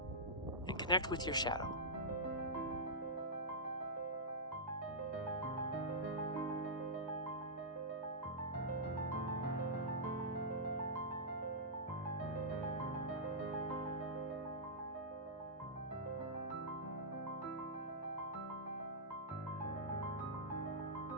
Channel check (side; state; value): both; normal; correlation -0.13